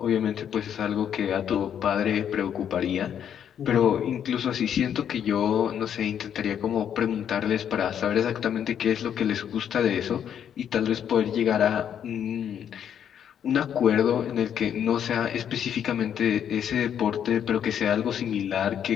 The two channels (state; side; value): quieter; right; 9.0 dB